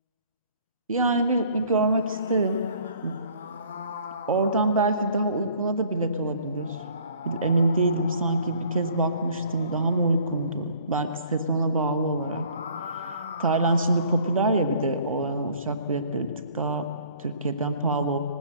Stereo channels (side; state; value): both; inverted; correlation -0.55